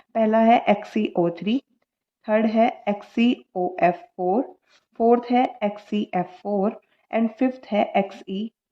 पहला है XeO3, थर्ड है XeOF4, फोर्थ है XeF4 एंड फिफ्थ है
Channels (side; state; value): both; identical; correlation 1.00